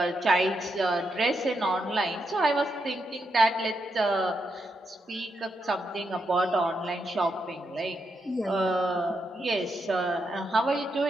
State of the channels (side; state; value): both; normal; correlation 0.82